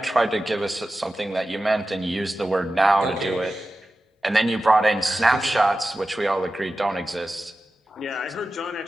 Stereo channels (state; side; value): normal; both; correlation 0.94